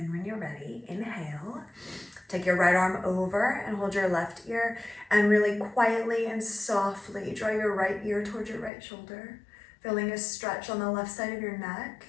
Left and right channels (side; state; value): right; drops out; at 8.7 s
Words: when you're ready, inhale. Take your right arm over and hold your left ear, and really quietly and softly draw your right ear towards your right shoulder, feeling a stretch on the left side of your neck,